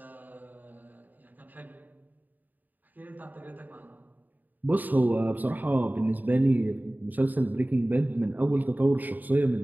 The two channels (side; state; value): left; late; 0.085 ms